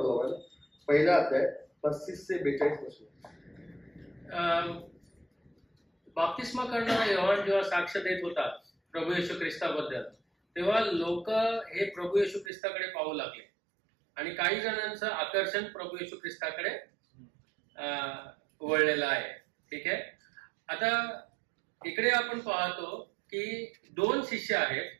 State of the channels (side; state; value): left; drops out; at 12.5 s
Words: पहिला अध्याय 35 ते 42 वचन. बाप्तिस्मा करणारा योहान जेव्हा साक्ष देत होता प्रभू येशू ख्रिस्ताबद्दल, तेव्हा लोक हे प्रभू येशू ख्रिस्ताकडे पाहू लागले आणि काही जणांचं आकर्षण प्रभू येशू ख्रिस्ताकडे वळलेलं आहे. ठीक आहे. आता इकडे आपण पाहतो की 2 शिष्य